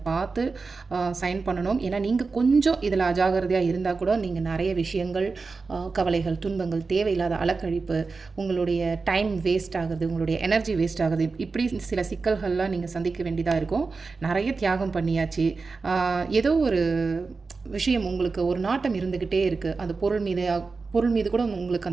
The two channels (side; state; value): left; quieter; 4.3 dB